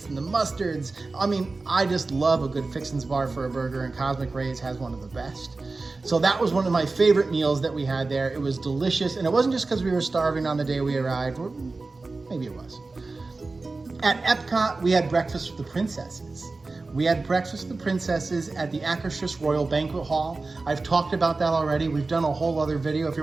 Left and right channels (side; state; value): left; quieter; 3.6 dB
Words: and the mustards. I mean, I just love a good fixings bar for a burger, and Cosmic Ray's has one of the best. So that was one of my favorite meals that we had there. It was delicious, and it wasn't just because we were starving on the day we arrived, or maybe it was. At Epcot, we had breakfast with the princesses. We had breakfast with the princesses at the Akershus Royal Banquet Hall. I've talked about that already. We've done a whole other video. If